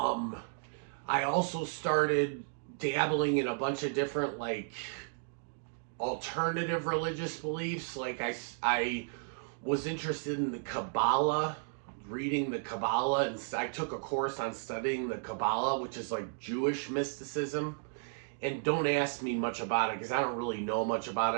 also started dabbling in a bunch of different like alternative religious beliefs. Like I was interested in the Kabbalah, reading the Kabbalah, and I took a course on studying the Kabbalah, which is like Jewish mysticism. And don't ask me much about it because I don't really know much about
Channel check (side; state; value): left; silent; digital silence